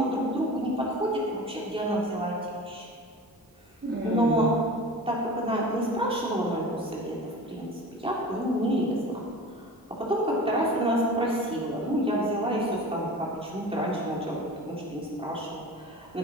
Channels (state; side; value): normal; both; correlation 0.36